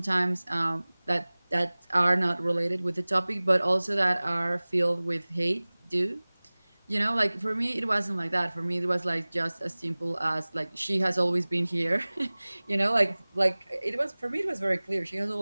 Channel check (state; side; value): inverted; both; correlation -1.00